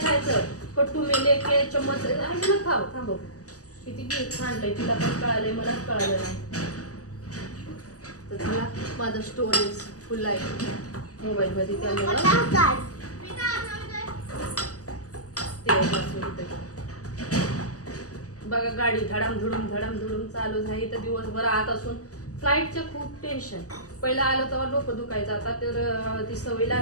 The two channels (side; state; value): right; late; 0.67 ms